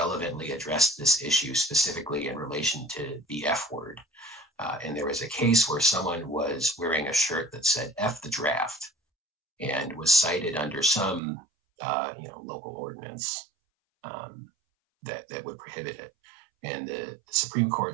addressed this issue specifically in relation to the F word. And there was a case where someone was wearing a shirt that said F the draft and was cited under some local ordinance that would prohibit it. And the Supreme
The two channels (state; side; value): drops out; left; at 11.2 s